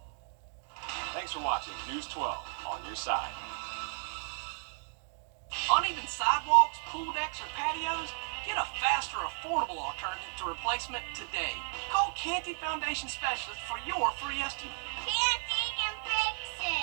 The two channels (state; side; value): silent; left; 55 dB below the other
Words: Thanks for watching News 12 on your side. Uneven sidewalks, pool decks, or patios? Get a faster, affordable alternative to replacement today. Call Canty Foundation Specialists for your free estimate. Canty can fix